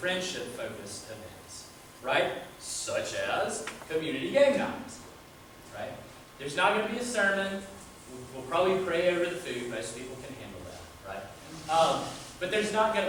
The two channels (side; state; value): both; identical; correlation 1.00